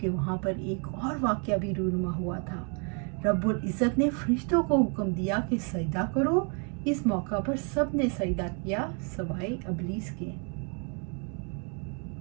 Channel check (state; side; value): quieter; left; 38.0 dB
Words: वहाँ पर एक और वाक़या भी रूनुमा हुआ था। रब्बुल इज़्ज़त ने फरिश्तों को हुक्म दिया कि सजदा करो। इस मौका पर सब ने सजदा किया सवाए इब्लीस के।